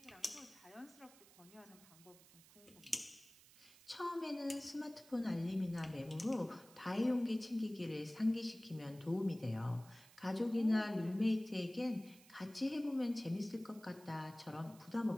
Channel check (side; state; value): right; noise; hiss, 23 dB below the sound